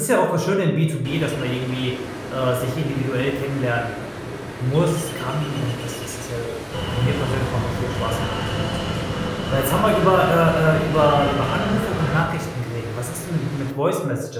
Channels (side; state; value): both; identical; correlation 1.00